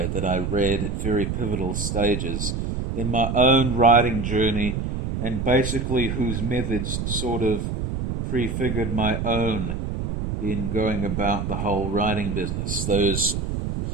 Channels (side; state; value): right; noise; rumble, 3 dB below the sound